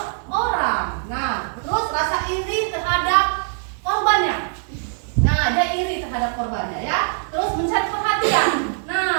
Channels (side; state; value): left; silent; 62 dB below the other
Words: orang. Nah, terus rasa iri terhadap korbannya. Nah, dia iri terhadap korbannya ya. Terus mencari perhatian.